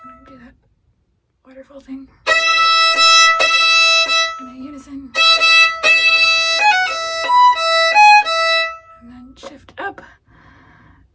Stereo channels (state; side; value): identical; both; correlation 1.00